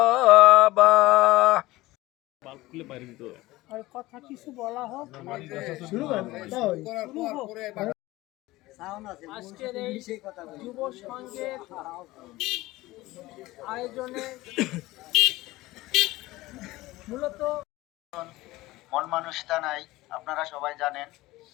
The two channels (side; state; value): right; quieter; 18.6 dB